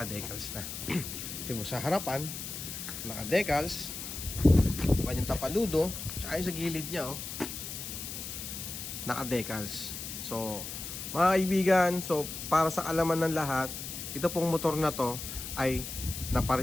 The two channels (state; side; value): noise; left; hiss, 7 dB below the sound